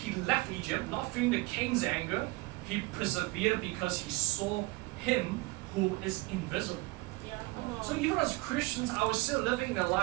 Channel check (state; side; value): quieter; left; 23.0 dB